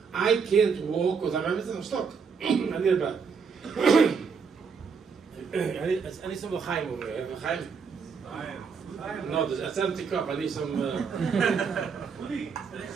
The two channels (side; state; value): left; quieter; 5.8 dB